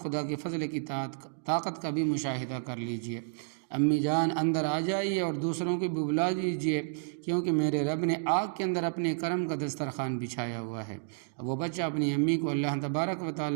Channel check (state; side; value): silent; left; digital silence